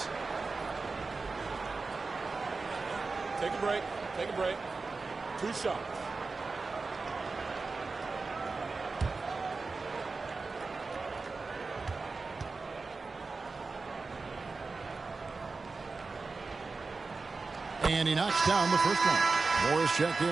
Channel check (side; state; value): left; quieter; 4.1 dB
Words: Take a break. Take a break. 2 shots. And he knocks down the first one. Morris checked